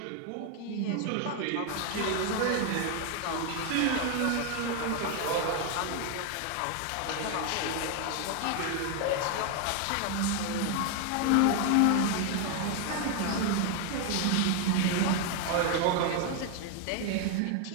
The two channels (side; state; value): both; different; correlation 0.01